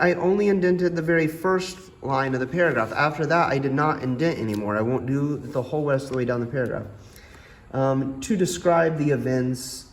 only indented the very first line of the paragraph. After that, I did not indent anymore. I won't do the whole rest of the way down the paragraph. To describe the events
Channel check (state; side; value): identical; both; correlation 1.00